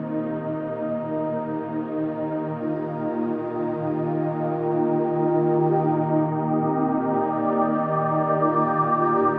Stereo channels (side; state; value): both; identical; correlation 1.00